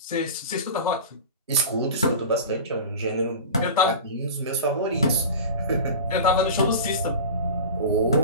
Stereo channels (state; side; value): inverted; both; correlation -0.32